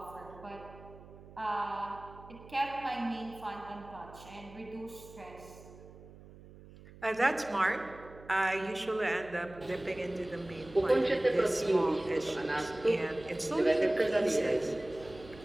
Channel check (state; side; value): noise; right; hum, 19 dB below the sound